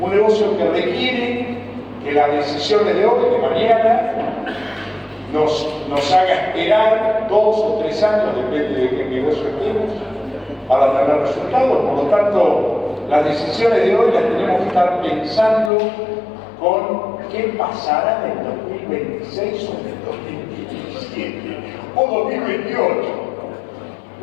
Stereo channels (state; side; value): drops out; right; at 15.7 s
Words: negocio que requiere que las decisiones de hoy, de mañana, nos haga esperar 2 o 3 años, depende de qué negocio estemos, para tener resultados. Por lo tanto, las decisiones de hoy las tenemos que estar pensando con qué pasará en el 2026 o en el 2027 o 2028.